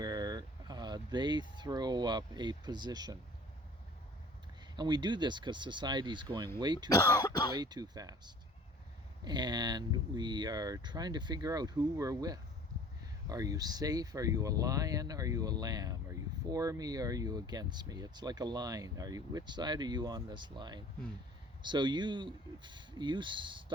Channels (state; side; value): normal; both; correlation 0.48